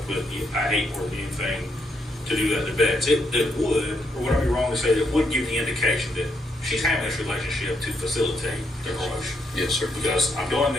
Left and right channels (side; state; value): both; normal; correlation 0.77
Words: with, I hate more than anything to do that to Betts. It would, or would I be wrong to say, it would give the indication that she's having this relationship to facilitate the promotion. Yes, sir. Because I'm doing